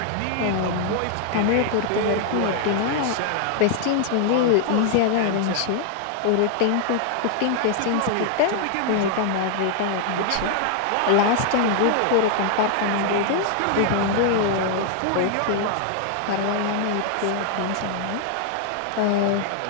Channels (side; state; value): both; different; correlation 0.00